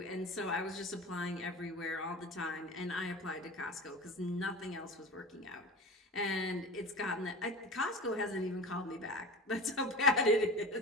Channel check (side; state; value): both; normal; correlation 0.32